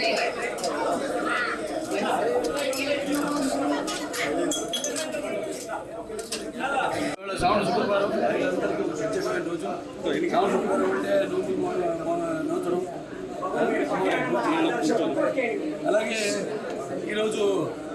శ్రావణ శుక్రవారం అందరికీ ప్రత్యేకమైన రోజు. శ్రావణ శుక్రవారం అంటే నూతనం. అలాగే ఈరోజు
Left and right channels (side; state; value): both; identical; correlation 1.00